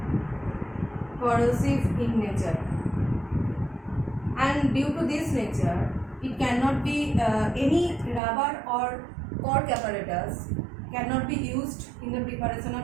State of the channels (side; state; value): left; drops out; at 8.2 s